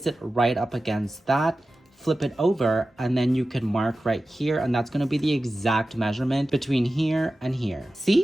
it right up against that, flip it over, and then you can mark right here, and that's going to be the exact measurement between here and here.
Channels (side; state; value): both; normal; correlation 0.95